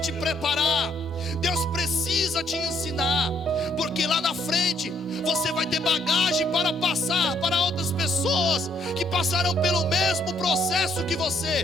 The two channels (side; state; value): both; normal; correlation 0.69